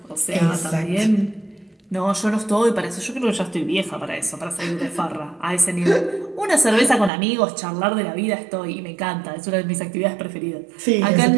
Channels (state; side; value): drops out; left; at 7.1 s